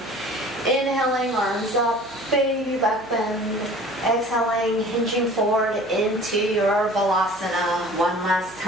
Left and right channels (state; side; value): noise; right; hum, 24 dB below the sound